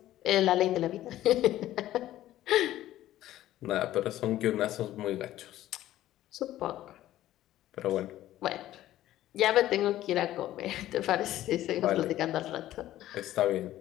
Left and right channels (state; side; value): quieter; right; 13.9 dB